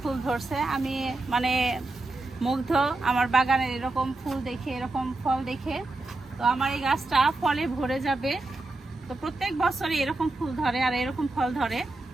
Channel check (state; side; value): quieter; left; 3.0 dB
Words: ধরছে। আমি মানে মুগ্ধ আমার বাগানের এরকম ফুল দেখে, এরকম ফল দেখে। তো আমার এই গাছটা ফলে ভরে যাবে। তো প্রত্যেক বছরই এরকম ফুল ধরে আর এরকম ফল ধরে,